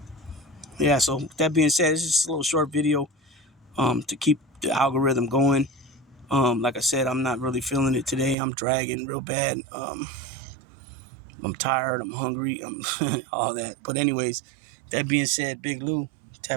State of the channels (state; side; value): drops out; left; at 8.3 s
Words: yeah, so with that being said, it's just a little short video to keep the algorithm going. Like I said, I'm not really feeling it today. I'm dragging real bad. I'm tired. I'm hungry. I'm all that. But anyways, that being said, Big Lou,